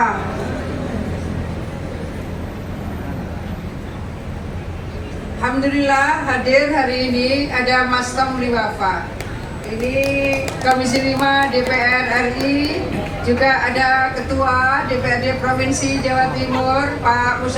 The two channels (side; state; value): both; identical; correlation 1.00